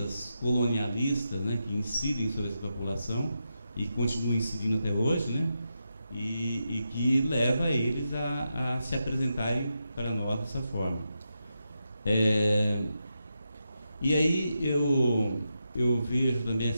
colonialistas, né, que incidem sobre essa população e continuam incidindo até hoje, né, e que leva eles a se apresentarem para nós dessa forma. E aí eu vejo também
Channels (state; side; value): inverted; both; correlation -0.87